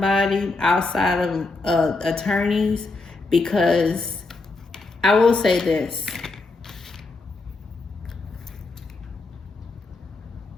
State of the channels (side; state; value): right; quieter; 3.5 dB